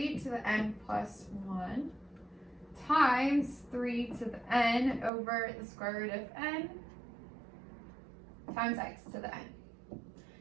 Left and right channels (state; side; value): drops out; left; at 5.1 s